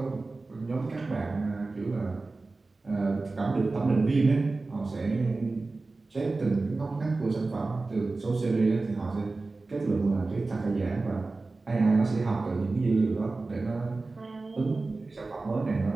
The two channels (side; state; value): left; quieter; 3.5 dB